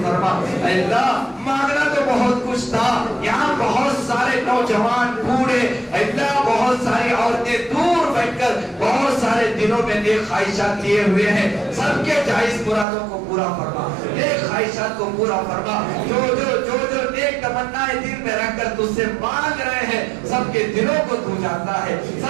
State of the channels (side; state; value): left; drops out; at 12.9 s